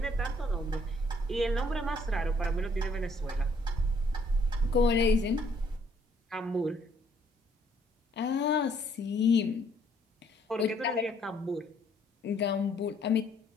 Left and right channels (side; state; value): both; normal; correlation 0.65